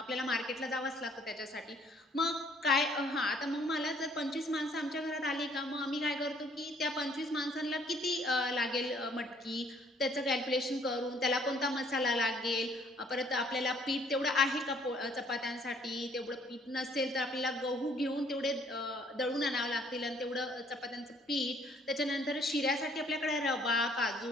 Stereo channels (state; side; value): normal; both; correlation 0.62